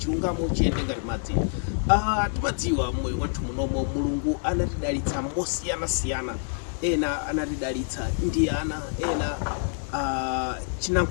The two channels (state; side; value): silent; right; digital silence